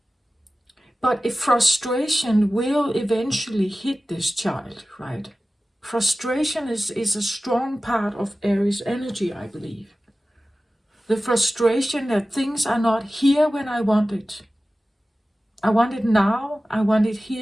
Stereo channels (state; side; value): normal; both; correlation 0.96